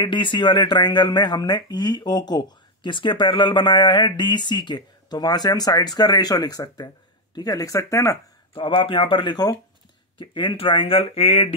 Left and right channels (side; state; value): both; normal; correlation 0.05